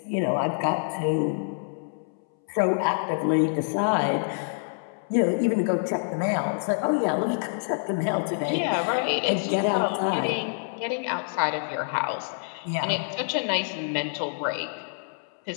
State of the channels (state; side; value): silent; right; 60 dB below the other